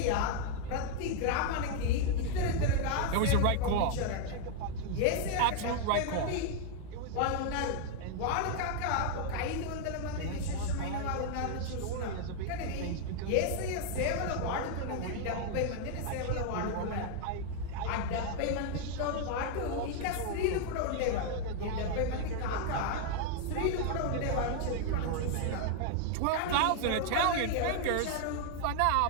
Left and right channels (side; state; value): both; different; correlation 0.00